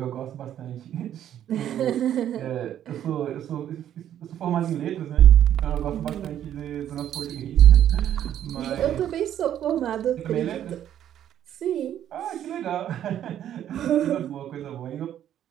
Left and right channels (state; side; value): quieter; left; 10.8 dB